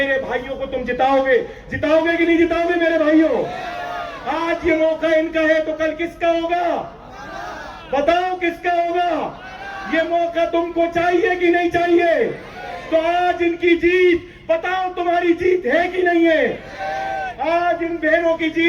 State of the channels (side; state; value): both; identical; correlation 1.00